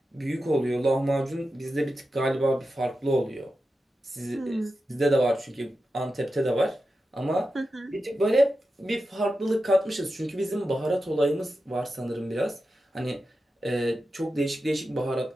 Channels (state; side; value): normal; both; correlation 0.91